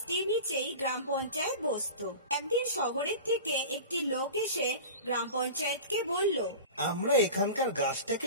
নিচেই গ্রাম পঞ্চায়েত বসতো। একদিন শহরের থেকে একটি লোক এসে গ্রাম পঞ্চায়েতকে বলল, আমরা এখানকার গাছটা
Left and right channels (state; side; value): inverted; both; correlation -0.33